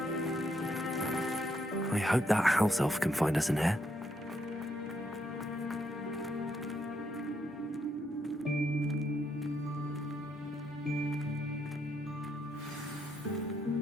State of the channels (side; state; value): both; normal; correlation 0.77